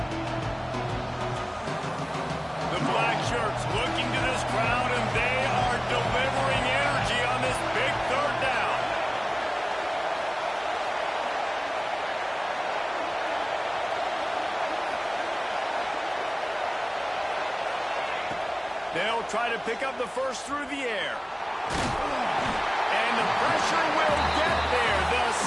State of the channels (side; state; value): both; identical; correlation 1.00